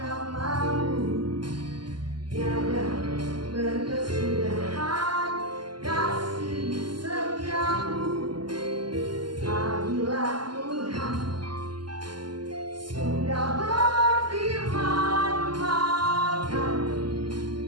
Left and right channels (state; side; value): late; left; 0.71 ms